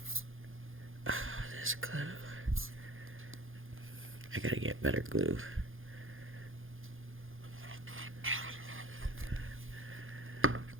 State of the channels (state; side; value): late; left; 0.59 ms